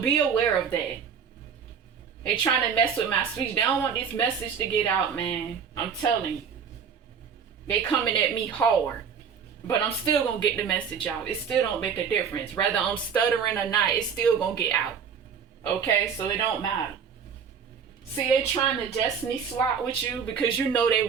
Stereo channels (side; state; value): left; quieter; 6.9 dB